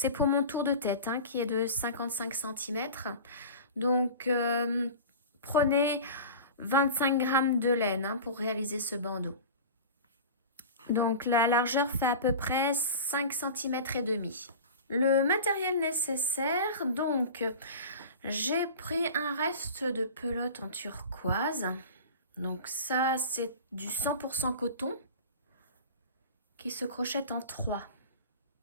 pour mon tour de tête qui est de 55 cm. Donc prenez 25 grammes de laine pour réaliser ce bandeau. Donc la largeur fait à peu près 5 cm et demi. Le matériel nécessaire, donc j'ai pris un reste de pelote en turquoise. Donc ça, c'est du 100% coton qui se crochette en 3.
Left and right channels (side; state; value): both; inverted; correlation -0.35